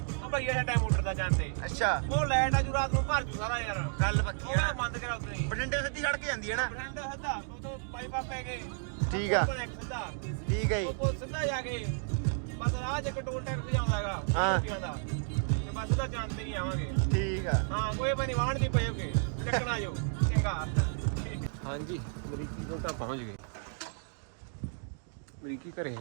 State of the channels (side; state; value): left; silent; 56 dB below the other